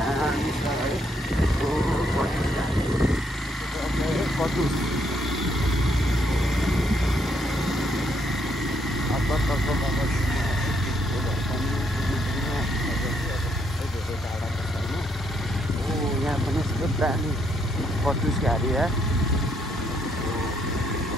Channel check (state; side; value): normal; both; correlation 0.73